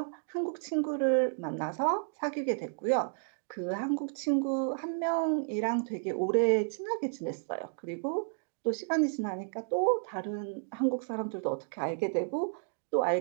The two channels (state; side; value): silent; left; digital silence